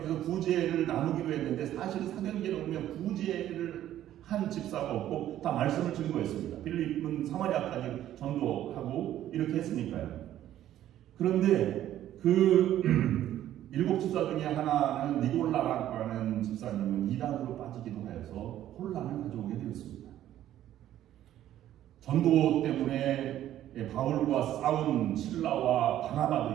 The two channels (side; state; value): left; quieter; 12.3 dB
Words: 구제를 나누기로 했는데 사실 사도행전에 보면 구제를 한 집사가 없고 다 말씀을 증거했습니다. 빌립은 사마리아까지 전도하고 이렇게 했으니까요. 그런데 그 일곱 집사 중에 하나는 니골라라고 하는 집사님은 이단으로 빠지기도 하여서 혼란을 가져오게 되었습니다. 전도 때문에 바울과 싸운 실라와